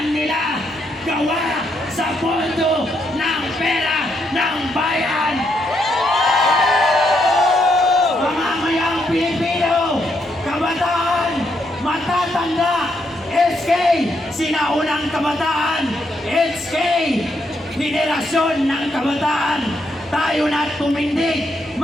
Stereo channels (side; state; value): both; normal; correlation 0.77